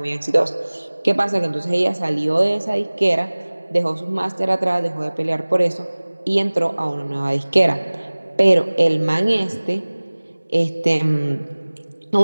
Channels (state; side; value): inverted; both; correlation -1.00